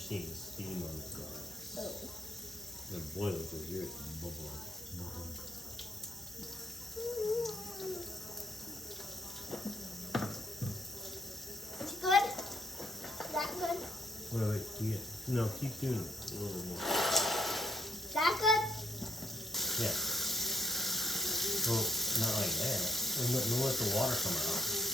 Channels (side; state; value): both; normal; correlation 0.74